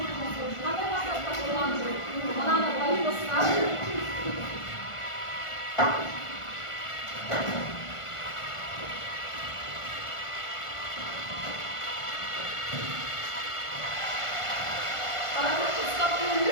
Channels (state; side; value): late; right; 1.5 ms